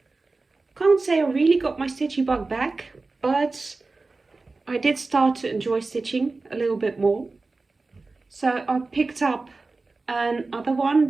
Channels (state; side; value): quieter; left; 3.6 dB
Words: can't say I really got my stitchy bug back, but I did start to enjoy stitching a little bit more. So I picked up another one